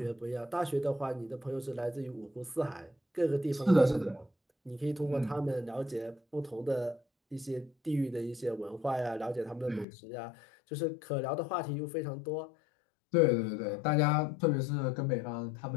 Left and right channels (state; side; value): drops out; right; at 9.9 s